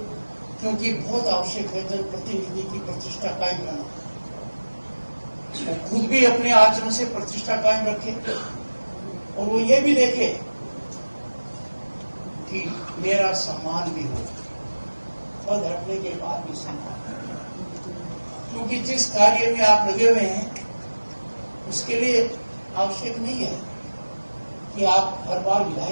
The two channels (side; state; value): both; inverted; correlation -1.00